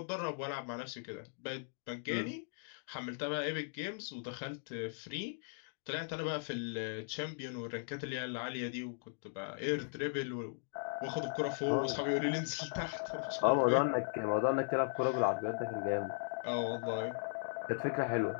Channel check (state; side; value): silent; right; digital silence